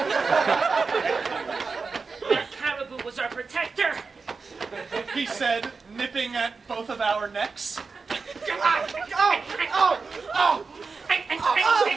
That caribou was our protector. He said, nipping at both of our necks.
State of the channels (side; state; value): left; quieter; 4.6 dB